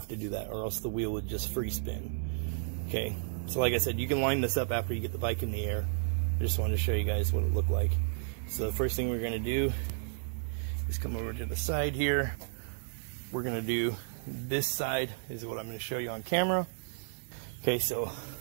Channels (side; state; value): left; silent; 56 dB below the other